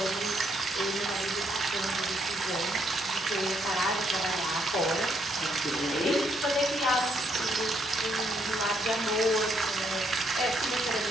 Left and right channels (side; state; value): both; normal; correlation 0.74